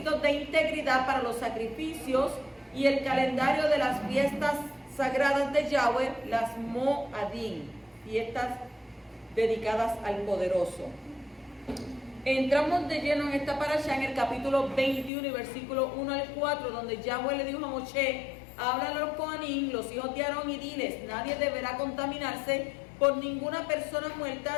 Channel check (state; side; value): drops out; right; at 15.1 s